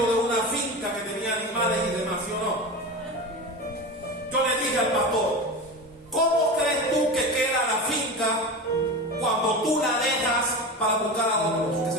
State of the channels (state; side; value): normal; both; correlation 0.26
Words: de una finca que tenía animales y demás, ¿sí o no? Yo le dije al pastor, ¿cómo crees tú que queda la finca cuando tú la dejas para buscar a otros que